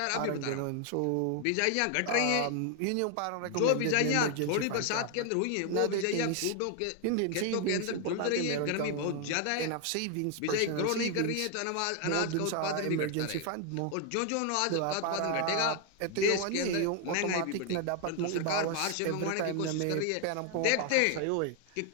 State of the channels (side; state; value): both; different; correlation 0.01